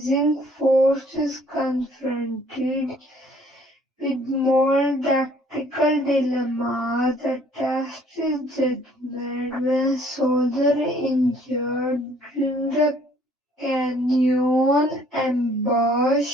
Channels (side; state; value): both; normal; correlation 0.59